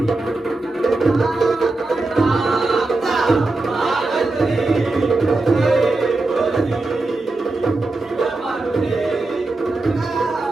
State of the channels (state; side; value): quieter; left; 3.1 dB